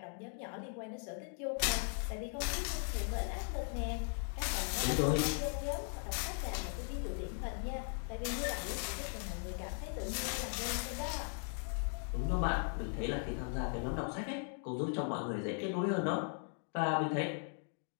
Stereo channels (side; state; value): right; silent; 52 dB below the other